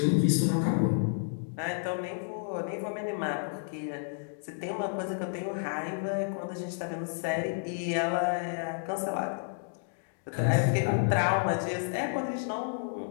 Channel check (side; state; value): right; silent; digital silence